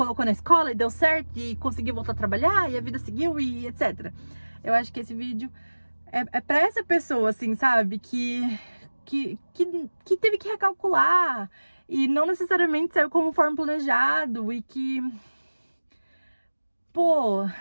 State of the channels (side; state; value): both; inverted; correlation -1.00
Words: na escola e deu certo e conseguiu voltar a trabalhar e a vida seguiu e etc. Eu acho que esse vídeo é pra essa pessoa, assim, sabe? Que teve que recalcular e não necessariamente saiu conforme planejado e que pô,